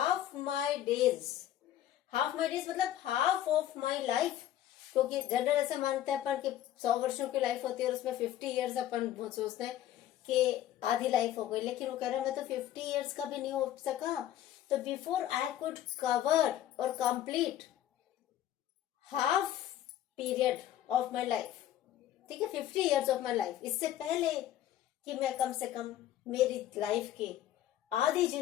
माई डेज मतलब हाफ ऑफ माई लाइफ, क्योंकि जनरल ऐसा मानते हैं अपन कि 100 वर्षों की लाइफ होती है और उसमें 50 years अपन सोचते हैं कि आधी लाइफ हो गई। लेकिन वो कह रहा है मैं तो 50 years का भी नहीं हो सका। तो बिफोर आई कुड कवर और complete half period of my life, ठीक है, 50 ईयर्स ऑफ माई लाइफ, इससे पहले कि मैं कम से कम मेरी लाइफ की आधी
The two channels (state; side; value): quieter; right; 12.1 dB